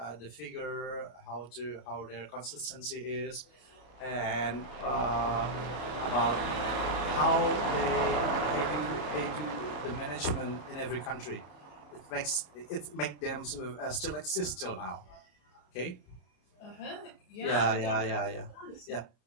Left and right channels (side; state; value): right; late; 33 ms